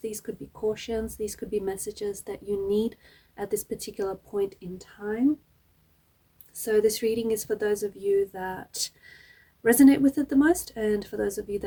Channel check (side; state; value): both; identical; correlation 1.00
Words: these could be cautions, these could be messages that you need at this particular point in time. So this reading is for those of you that resonate with it the most, and for those of you